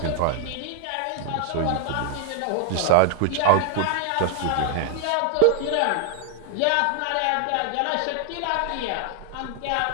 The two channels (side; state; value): both; different; correlation 0.00